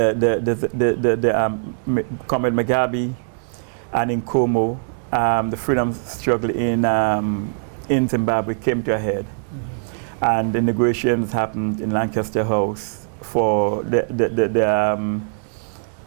Mugabe and Nkomo, the freedom struggle in Zimbabwe came to a head. And the negotiations happened in Lancaster House for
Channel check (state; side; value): silent; left; 65 dB below the other